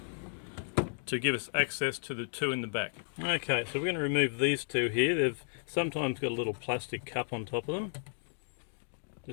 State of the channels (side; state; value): right; silent; digital silence